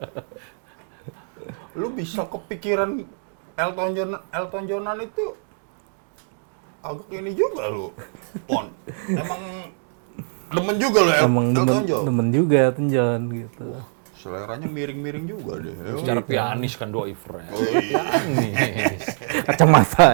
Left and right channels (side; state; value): left; silent; digital silence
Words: Lu bisa kepikiran Elton Johnan itu agak ini juga lu. Pon. Emang demen juga lu Emang Elton John. demen juga Elton John gitu. Seleranya miring-miring juga deh. Secara pianis kan Doi friend. Oh iya. Pianis. Kacamata